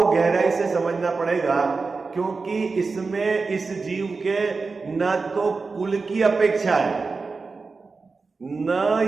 गहराई से समझना पड़ेगा, क्योंकि इसमें इस जीव के न तो कुल की अपेक्षा है,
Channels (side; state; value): left; quieter; 4.3 dB